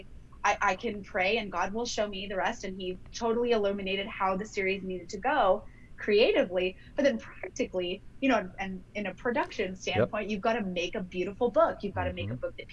I can pray, and God will show me the rest. And he totally illuminated how the series needed to go creatively, but then practically, and in a production standpoint, You've got to make a beautiful book. You've got to make a book that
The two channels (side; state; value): both; identical; correlation 1.00